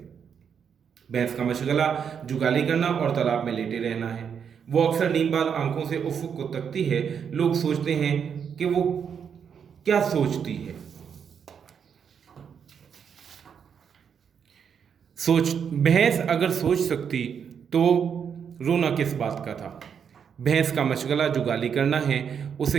भैंस का मशगला जुगाली करना और तालाब में लेटे रहना है। वो अक्सर नींदबाज आंखों से उफ़्क़ को तकती है। लोग सोचते हैं कि वो क्या सोचती है। भैंस अगर सोच सकती तो रोना किस बात का था। भैंस का मशगला जुगाली करना है।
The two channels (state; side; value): quieter; left; 7.3 dB